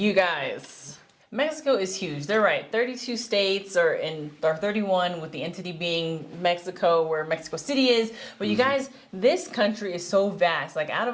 guys, Mexico is huge. They're right. 32 states or 31 with the entity being Mexico, where Mexico City is. But you guys, this country is so vast. Like out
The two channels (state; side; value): identical; both; correlation 1.00